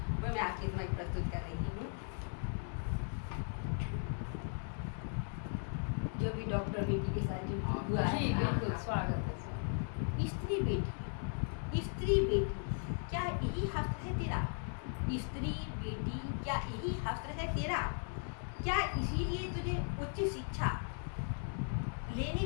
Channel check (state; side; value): silent; right; 53 dB below the other